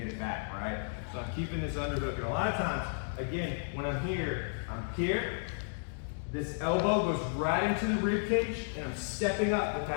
it back, right? So I'm keeping this underhook. And a lot of times, again, when I'm here, this elbow goes right into the rib cage, and I'm stepping up with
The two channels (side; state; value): right; silent; digital silence